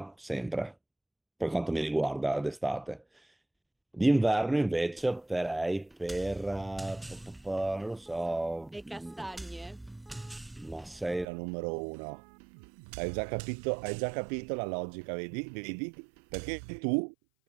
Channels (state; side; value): drops out; left; at 11.2 s